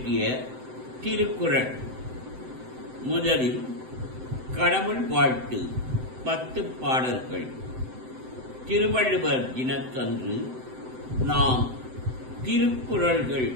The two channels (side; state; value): left; late; 7.8 ms